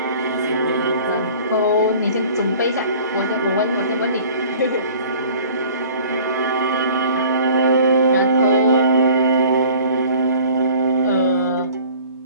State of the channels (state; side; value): inverted; both; correlation -0.48